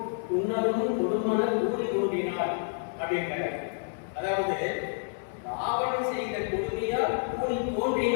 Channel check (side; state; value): right; silent; digital silence